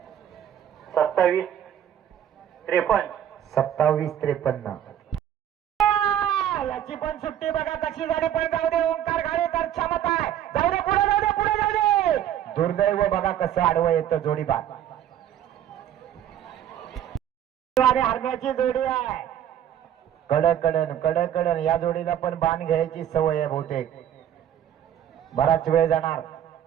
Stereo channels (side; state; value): left; quieter; 10.5 dB